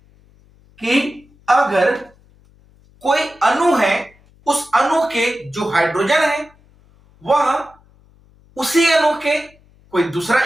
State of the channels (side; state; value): left; noise; hum, 30 dB below the sound